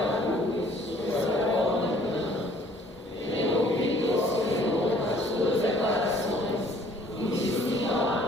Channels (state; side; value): normal; both; correlation 0.58